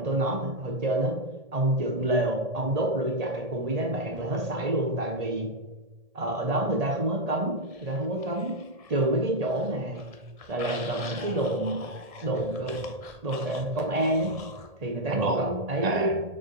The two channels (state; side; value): late; left; 1.7 ms